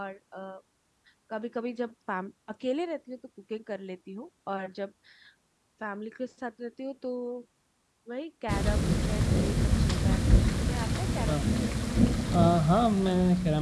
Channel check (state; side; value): identical; both; correlation 1.00